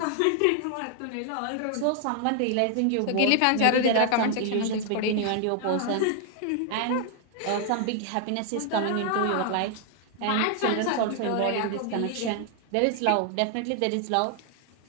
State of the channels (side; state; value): both; different; correlation 0.00